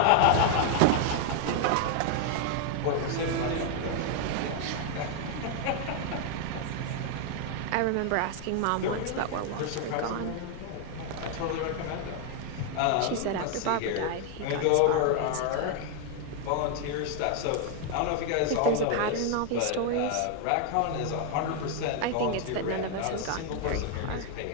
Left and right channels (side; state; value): both; different; correlation 0.00